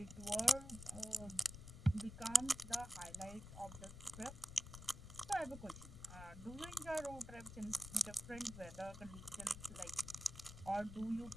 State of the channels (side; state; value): left; noise; rumble, 12 dB below the sound